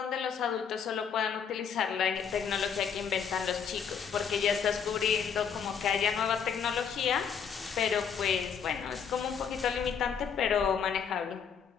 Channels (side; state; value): right; quieter; 7.2 dB